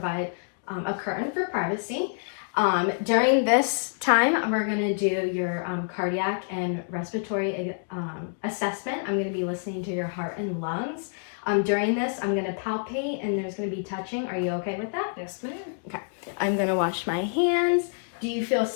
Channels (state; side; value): silent; right; digital silence